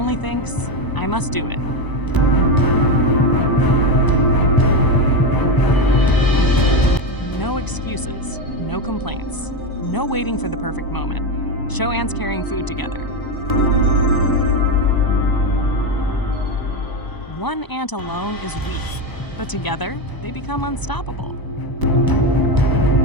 thinks, "I must do it." No excuses, no complaints, no waiting for the perfect moment. Show ants carrying food together. One ant alone is weak, but together they become unstoppable.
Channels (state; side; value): late; right; 1.0 ms